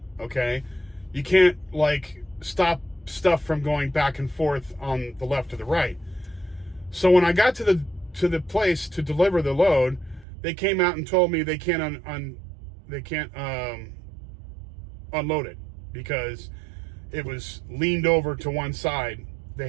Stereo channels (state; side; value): drops out; left; at 10.2 s